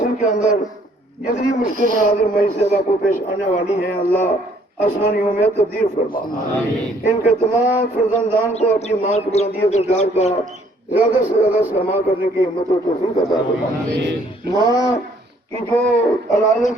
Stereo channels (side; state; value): both; normal; correlation 0.63